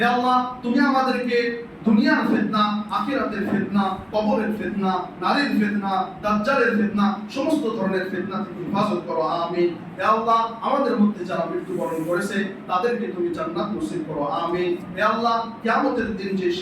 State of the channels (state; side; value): identical; both; correlation 1.00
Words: আল্লাহ তুমি আমাদেরকে দুনিয়ার ফিতনা, আখিরাতের ফিতনা, কবরের ফিতনা, নারীর ফিতনা, দাজ্জালের ফিতনা, সমস্ত ধরনের ফিতনা থেকে হেফাজত করো, আমিন। হে আল্লাহ আমাদের মধ্যে যারা মৃত্যুবরণ করেছে তাদেরকে তুমি জান্নাত নসিব করো, আমিন। হে আল্লাহ কিয়ামতের দিন যে